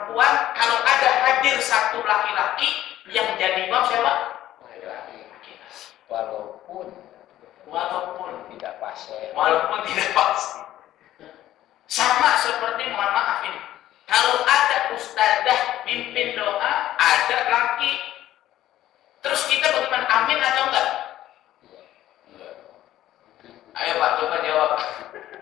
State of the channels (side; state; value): right; quieter; 13.5 dB